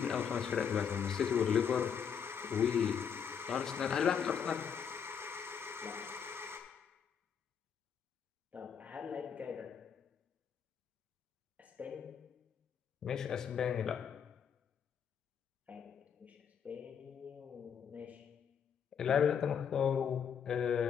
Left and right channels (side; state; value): right; quieter; 7.4 dB